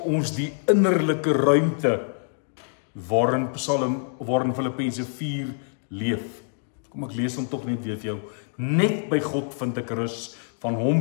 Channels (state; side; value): silent; right; digital silence